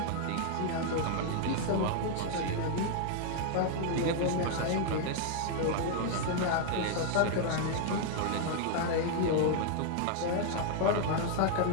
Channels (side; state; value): both; different; correlation 0.00